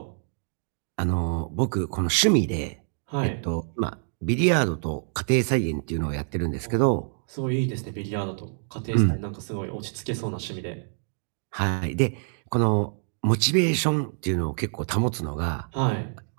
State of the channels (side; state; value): left; silent; digital silence